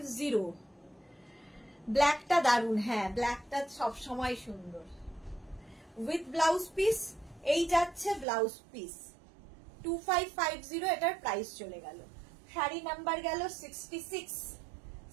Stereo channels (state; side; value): drops out; left; at 8.2 s